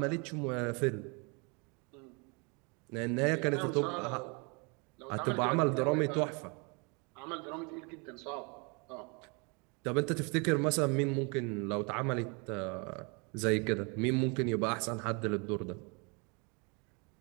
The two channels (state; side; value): quieter; left; 32.1 dB